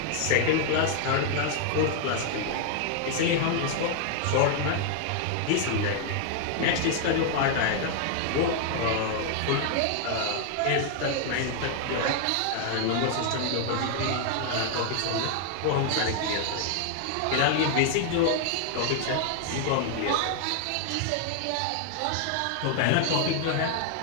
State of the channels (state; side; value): different; both; correlation 0.00